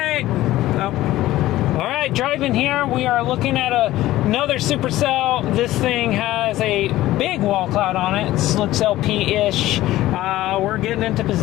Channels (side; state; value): right; quieter; 15.7 dB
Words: Alright, driving here, we are looking at another supercell. This thing has a big wall cloud on it. It looks LP-ish. We're getting into